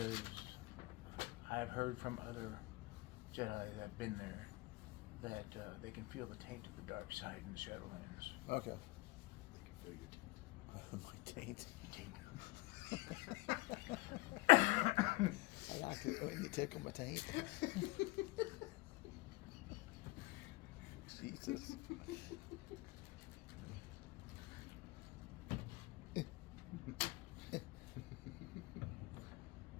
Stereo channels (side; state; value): right; quieter; 20.6 dB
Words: I've heard from other Jedi that have been there that they can feel the taint of the dark side in the Shadowlands. Okay. They can feel your My taint. Taint. I like it when you tickle my taint. Jesus.